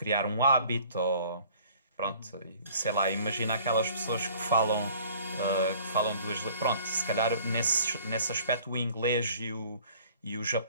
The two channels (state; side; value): inverted; both; correlation -0.53